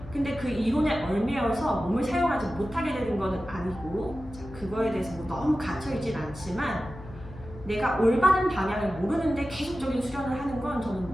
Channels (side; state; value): left; noise; hum, 16 dB below the sound